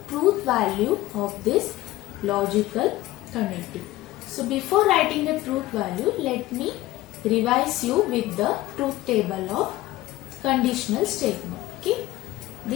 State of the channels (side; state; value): right; quieter; 16.9 dB